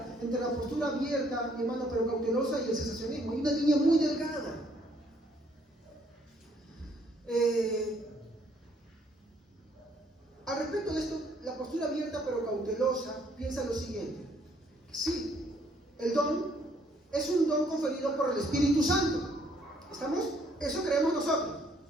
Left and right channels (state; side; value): normal; both; correlation 0.66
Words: entre la postura abierta, mi hermano, pero cautelosa, y el cesacionismo. Hay una línea muy delgada. Al respecto de esto, la postura abierta pero cautelosa piensa lo siguiente: sí, el don es un don conferido por el Espíritu Santo. ¿Estamos? Eso creemos nosotros.